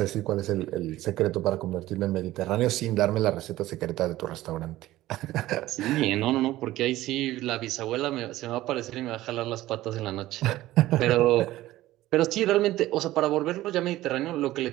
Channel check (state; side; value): quieter; left; 16.0 dB